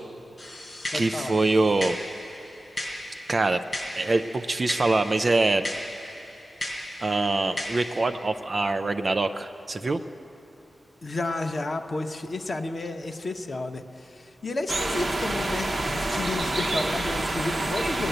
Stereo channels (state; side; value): normal; both; correlation 0.94